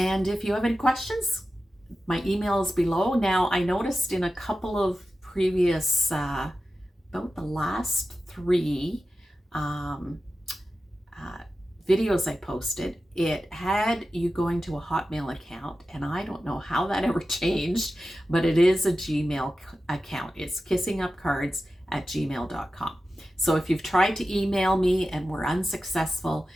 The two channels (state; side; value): normal; both; correlation 0.93